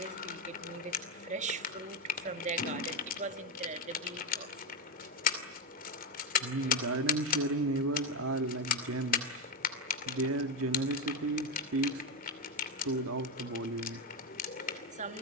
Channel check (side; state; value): both; normal; correlation 0.12